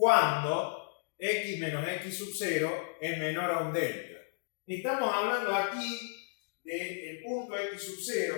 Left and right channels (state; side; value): silent; right; digital silence